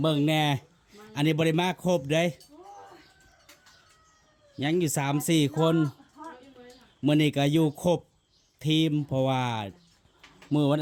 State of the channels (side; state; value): both; identical; correlation 1.00